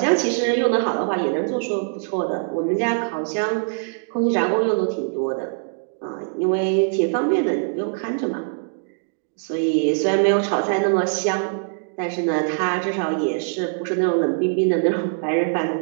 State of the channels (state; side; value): silent; left; digital silence